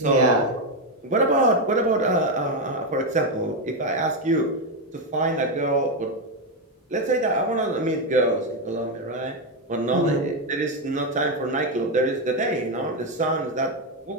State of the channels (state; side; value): normal; both; correlation 0.06